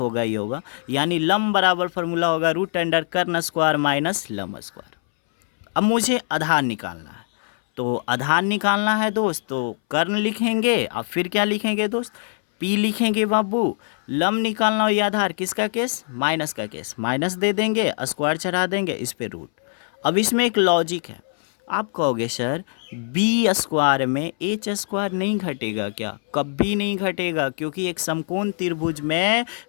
ही होगा। यानी लंब बराबर फॉर्मूला होगा रूट अंडर कर्ण स्क्वायर माइनस लंब स्क्वायर। अब मुझे आधार निकालना है, तो आधार निकालना है दोस्त, तो कर्ण लिखेंगे और फिर क्या लिखेंगे दोस्त, P लिखेंगे बाबू। लंब निकालना हो या आधार, किसका केस, माइनस का केस, माइनस दे देंगे, स्क्वायर चढ़ा देंगे, इस पे रूट। अब इसमें एक लॉजिक है, आप कहोगे सर B स्क्वायर में H स्क्वायर नहीं घटेगा क्या, कभी नहीं घटेगा, क्योंकि एक समकोण त्रिभुज में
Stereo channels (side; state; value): right; silent; 61 dB below the other